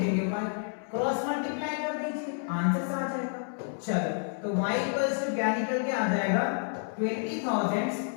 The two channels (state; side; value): silent; right; 58 dB below the other